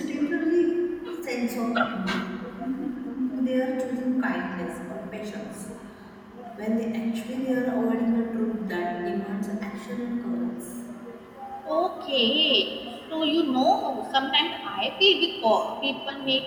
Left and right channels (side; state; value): both; identical; correlation 1.00